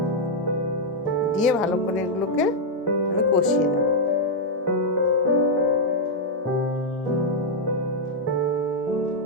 দিয়ে ভালো করে এগুলোকে আমি কষিয়ে নেব।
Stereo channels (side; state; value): both; normal; correlation -0.03